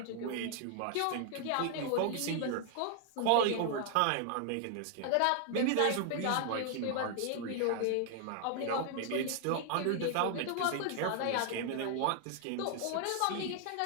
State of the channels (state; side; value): different; both; correlation 0.00